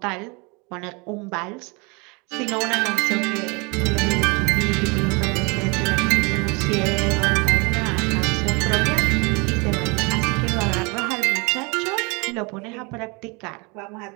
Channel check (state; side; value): quieter; left; 29.2 dB